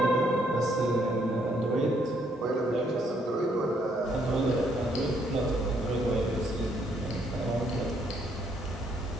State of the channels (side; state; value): both; normal; correlation 0.70